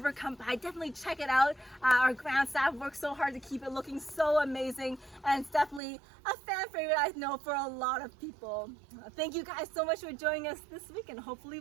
come by, definitely check it out. Our ground staff worked so hard to keep it looking so amazing, and it's definitely a fan favorite, I know, for a lot of people. Thank you guys so much for joining us this week, and hopefully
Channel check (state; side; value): drops out; left; at 5.8 s